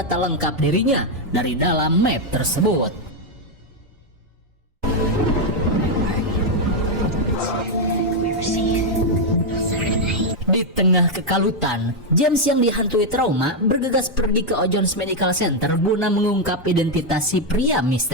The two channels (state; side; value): normal; both; correlation 0.01